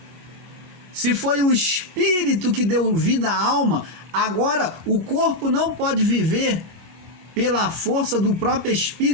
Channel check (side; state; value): left; late; 24 ms